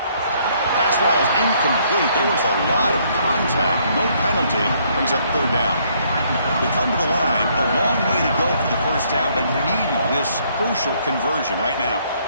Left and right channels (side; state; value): both; inverted; correlation -0.67